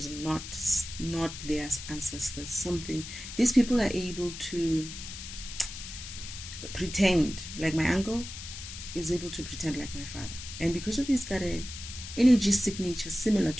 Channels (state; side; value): noise; left; hiss, 10 dB below the sound